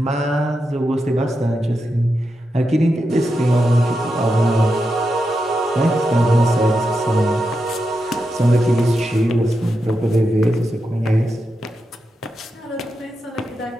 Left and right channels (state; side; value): normal; both; correlation 0.87